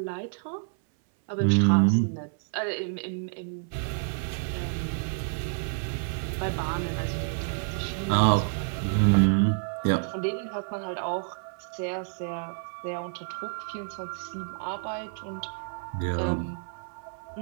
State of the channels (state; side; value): silent; left; 59 dB below the other